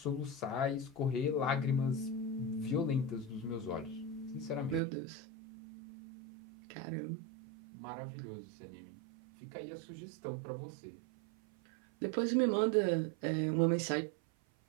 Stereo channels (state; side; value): drops out; left; at 4.8 s